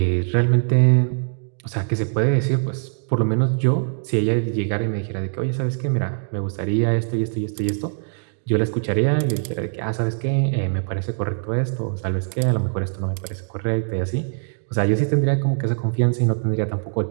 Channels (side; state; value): left; silent; digital silence